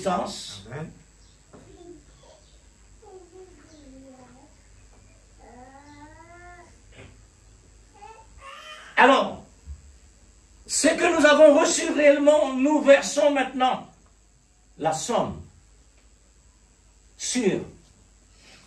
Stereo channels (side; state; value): both; identical; correlation 1.00